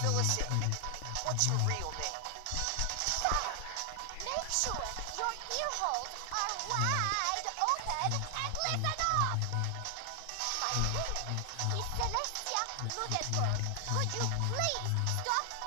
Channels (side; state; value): both; different; correlation 0.00